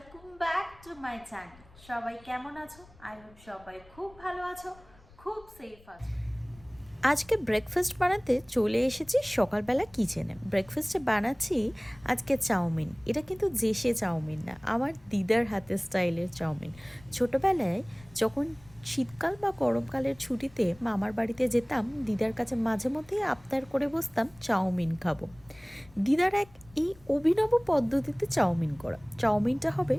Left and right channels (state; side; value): noise; left; rumble, 25 dB below the sound